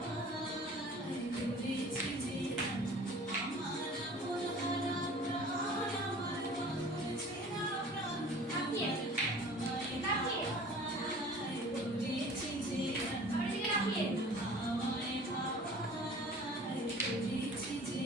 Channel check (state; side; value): normal; both; correlation 0.45